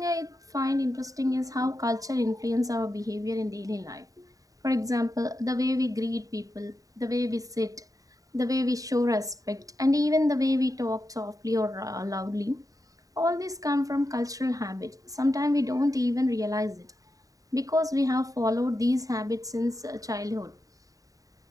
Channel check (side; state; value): left; late; 0.17 ms